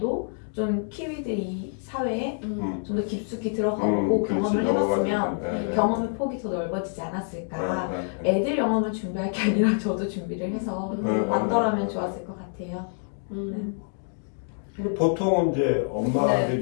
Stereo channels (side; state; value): right; silent; 61 dB below the other